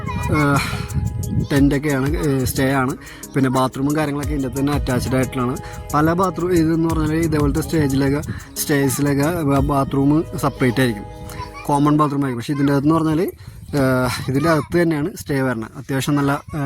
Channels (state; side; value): identical; both; correlation 1.00